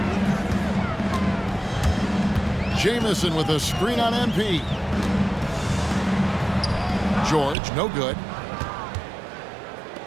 Jamison with a screen on MP. George, no good.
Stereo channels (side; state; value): left; drops out; at 7.6 s